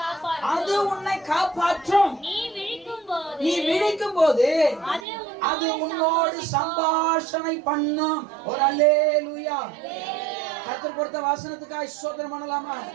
அது உன்னை காப்பாற்றும். நீ விழிக்கும்போது அது உன்னோடு சம்பாஷணை பண்ணும். ஒரு அல்லேலூயா. கர்த்தர் கொடுத்த வசனத்துக்காக ஸ்தோத்திரம் பண்ணலாமா?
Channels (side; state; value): left; drops out; at 5.1 s